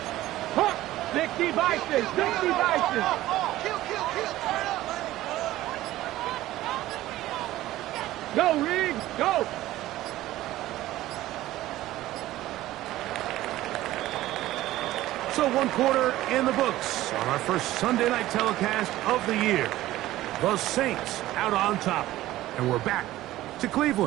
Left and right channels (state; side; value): quieter; left; 15.6 dB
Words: 60 Vices, 60 Vices. Go, Riggs, go! So 1 quarter in the books on our first Sunday night telecast of the year. The Saints out on top. And we're back to